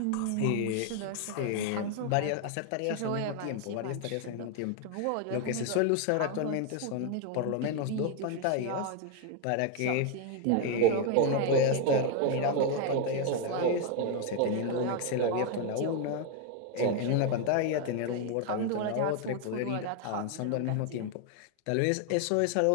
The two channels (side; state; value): both; different; correlation 0.01